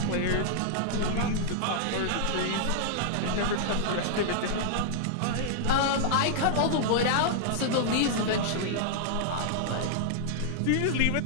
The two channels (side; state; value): both; different; correlation -0.01